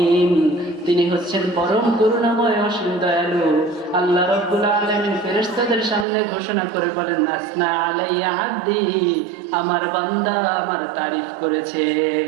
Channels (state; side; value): drops out; left; at 6.1 s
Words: তিনি হচ্ছেন পরম করুণাময় অসীম দয়ালু। আল্লাহ রাব্বুল আলামিন ফেরেশতাদের সামনে ঘোষণা করে বলেন আসনা আলাইয়া আব্দি, আমার বান্দা আমার তারিফ করেছে।